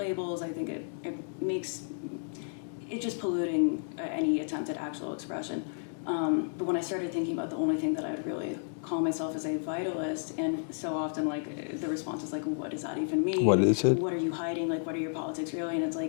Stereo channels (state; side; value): silent; right; digital silence